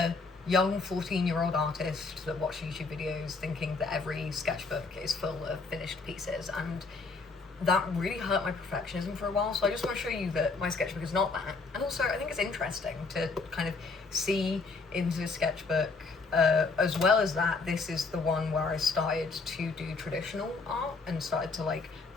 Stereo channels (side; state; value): right; quieter; 4.1 dB